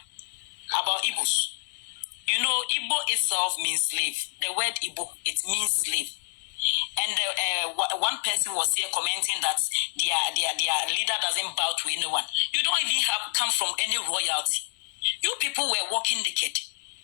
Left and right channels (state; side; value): silent; right; digital silence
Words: about Igbos. You know, Igbo itself means slave. The word Igbo, it means slave. And one person was here commenting that their leader doesn't bow to anyone. You don't even come from any royalty. You people were walking naked.